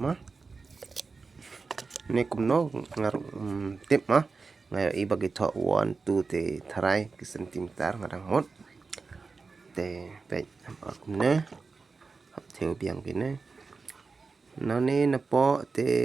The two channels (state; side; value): quieter; left; 4.4 dB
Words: ne kumno ngar tip mah ngai i bagi tho 1 2 te tharai ki centimeter ngadang mot te pe kumne hap theo biang kine nani na po te